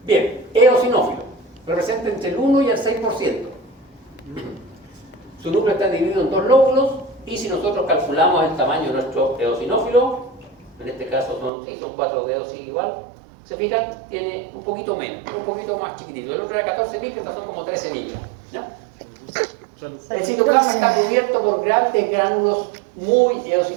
Bien, eosinófilo, representa entre el 1 y el 6%. Su núcleo está dividido en 2 lóbulos, y si nosotros calculamos el tamaño de nuestro eosinófilo, en este caso son 4 dedos, sigue igual, se fijan, tiene un poquito menos, un poquito más chiquitito. El otro era 14 micras, estos son como 13 micras, ¿ya? El citoplasma está cubierto por grandes gránulos muy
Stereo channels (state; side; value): drops out; left; at 11.5 s